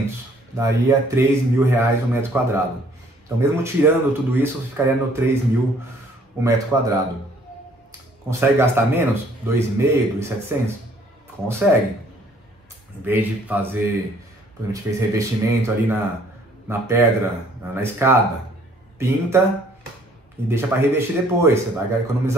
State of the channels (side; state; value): both; normal; correlation 0.60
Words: daria R$3.000 o metro quadrado. Então mesmo tirando tudo isso, ficaria no 3.000 o metro quadrado. Consegue gastar menos? 2.500, 2.700? Consegue. Em vez de fazer, por exemplo, a gente fez revestimento ali na pedra, na escada, pinta e deixa para revestir depois. Você vai